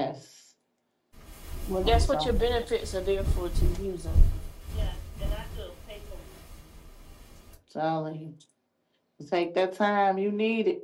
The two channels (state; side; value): identical; both; correlation 1.00